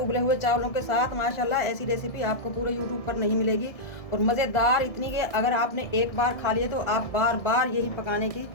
हुए चावलों के साथ। माशाल्लाह ऐसी रेसिपी आपको पूरे यूट्यूब पर नहीं मिलेगी और मज़ेदार इतनी कि अगर आपने एक बार खा लिए तो आप बार बार यही पकाने की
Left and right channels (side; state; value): right; late; 1.6 ms